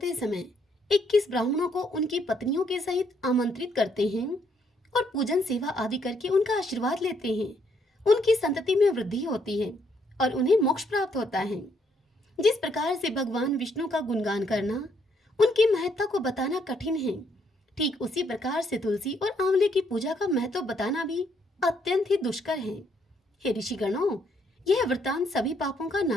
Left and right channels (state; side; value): normal; both; correlation 0.71